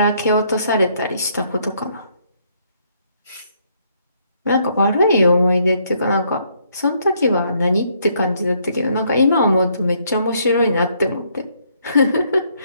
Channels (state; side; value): inverted; both; correlation -0.70